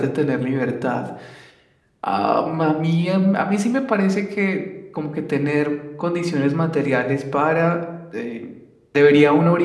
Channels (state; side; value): identical; both; correlation 1.00